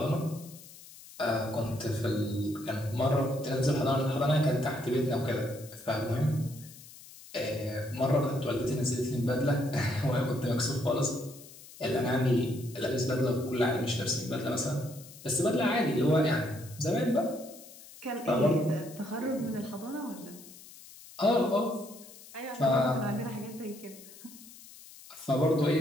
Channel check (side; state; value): left; noise; hiss, 19 dB below the sound